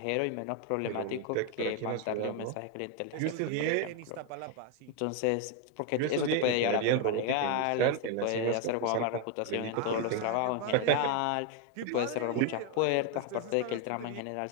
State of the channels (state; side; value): different; both; correlation 0.01